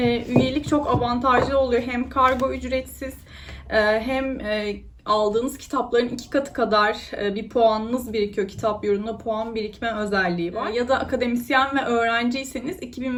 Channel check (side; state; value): both; identical; correlation 1.00